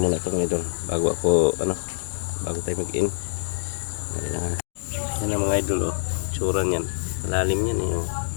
ito mga idol. Bago tayo mag-in. Yan ang mga idol, oh. Tsura niyan. Lalim yan, eh, oh.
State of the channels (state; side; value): silent; right; digital silence